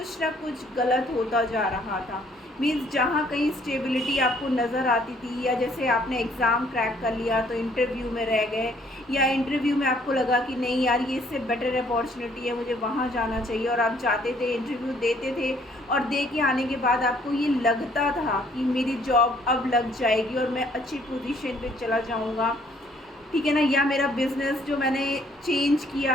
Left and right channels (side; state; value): both; normal; correlation 0.63